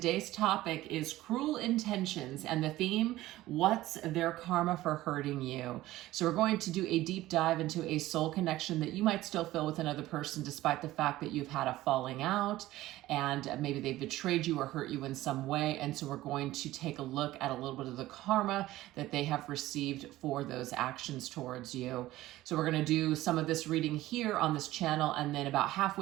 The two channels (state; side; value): quieter; left; 16.2 dB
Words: topic is cruel intentions and the theme, what's their karma for hurting you? So we're going to do a deep dive into a soul connection that you might still feel with another person despite the fact that you've had a falling out and maybe they betrayed you or hurt you in some way. And so we're going to take a look at a little bit of the karma that they have received for those actions towards you. So we're going to do some of this reading here on this channel, and then about